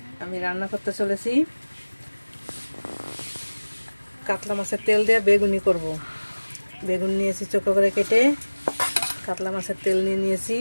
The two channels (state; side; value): inverted; both; correlation -1.00